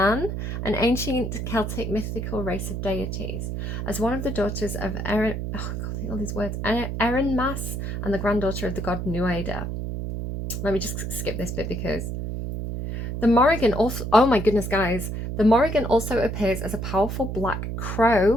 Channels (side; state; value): right; noise; hum, 4 dB below the sound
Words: an ancient Celtic mythical race of deities, as one of the daughters of Erin, all these words, Erin Mas, and the granddaughter of the god Nuada. Let me just skip this bit because the Morrigan also, oh my goodness, guys, the Morrigan also appears as a powerful black